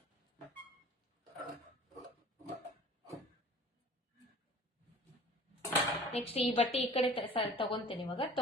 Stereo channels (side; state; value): both; normal; correlation 0.46